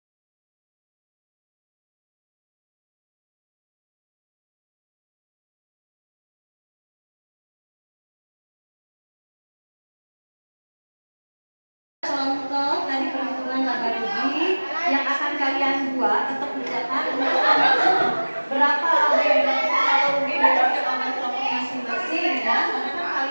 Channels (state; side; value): inverted; both; correlation -1.00